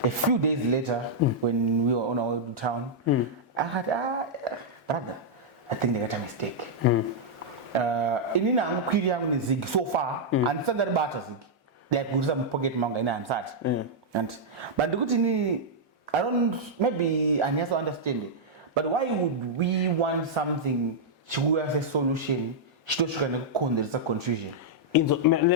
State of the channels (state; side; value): normal; both; correlation -0.06